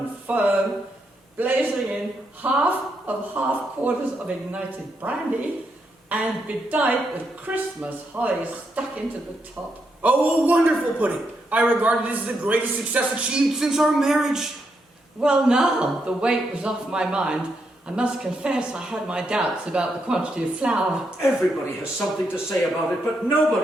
firm, blazing in half-quarters of ignited brandy, and bedight with Christmas holly stuck into the top. Oh, a wonderful pudding! I regard it as the greatest success achieved since our marriage. Well, now the weight was off my mind. I must confess I had my doubts about the quantity of flour. Everybody has something to say about it, but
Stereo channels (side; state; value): both; normal; correlation 0.80